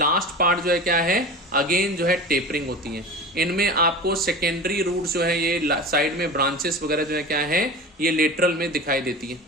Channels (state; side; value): normal; both; correlation 0.32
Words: पार्ट जो है क्या है, अगेन जो है टेपरिंग होती है। इनमें आपको सेकेंडरी रूट जो है ये साइड में ब्रांचेस वगैरह जो है क्या है, ये लेटरल में दिखाई देती है।